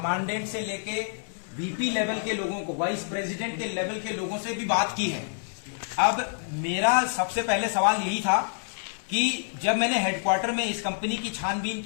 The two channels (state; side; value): silent; right; 59 dB below the other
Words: से लेके VP लेवल के लोगों को, वाइस प्रेसिडेंट के लेवल के लोगों से भी बात की है। अब मेरा सबसे पहले सवाल यही था कि जब मैंने हेडक्वार्टर में इस कंपनी की छानबीन